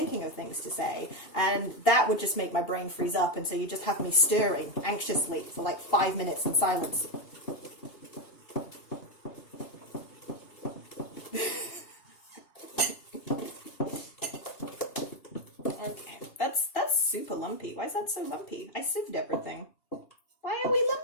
of things to say, and that would just make my brain freeze up, and so you just have me stirring anxiously for like 5 minutes in silence. That's super lumpy. Why is that so lumpy? I sieved everything. Why are we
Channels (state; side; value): late; right; 2.8 ms